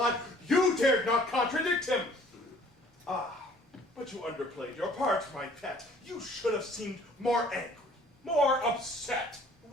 you dared not contradict him. Ah, but you underplayed your part, my pet. You should have seemed more angry, more upset.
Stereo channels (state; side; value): normal; both; correlation 0.56